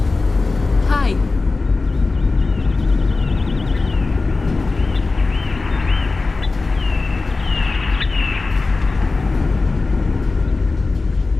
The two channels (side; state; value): right; quieter; 3.7 dB